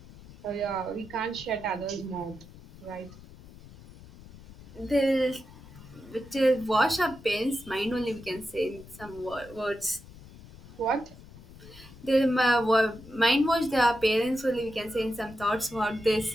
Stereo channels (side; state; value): left; noise; rumble, 19 dB below the sound